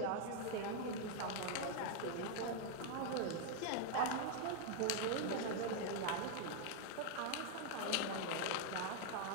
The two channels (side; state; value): both; different; correlation 0.00